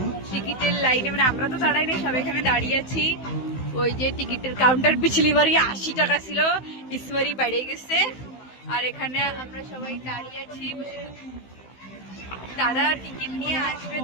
টিকিটের লাইনে, আমরা তো দাঁড়াই না, সবাই এখানে দাঁড়িয়ে আছি। ওই যে টিকিটের কাউন্টার পিছলি বাড়ি 80 টাকা ছিল, ইসবারই বেড়ে গেছে। আর এখানে আমরা সবাই দাঁড়িয়ে আছি, দাদা টিকিট নিয়ে আসবে,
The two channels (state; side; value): late; right; 16 ms